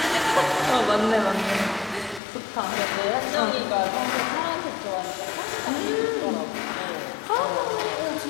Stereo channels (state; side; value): drops out; right; at 2.2 s